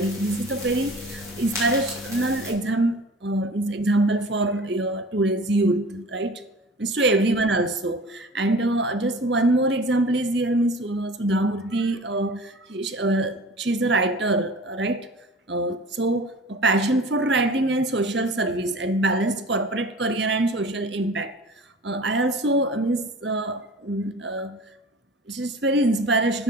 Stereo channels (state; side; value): normal; both; correlation 0.41